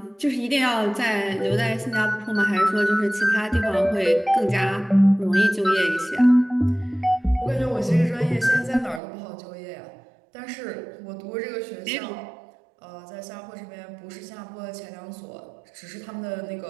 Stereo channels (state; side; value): drops out; left; at 9.0 s